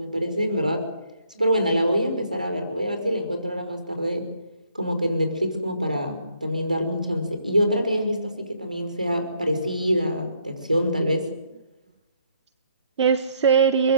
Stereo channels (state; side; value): inverted; both; correlation -0.69